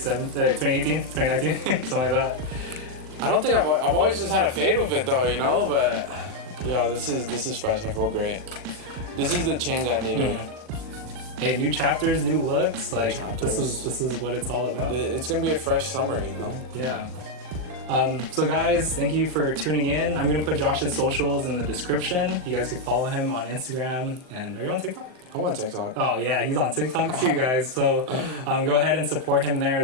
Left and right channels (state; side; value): late; left; 39 ms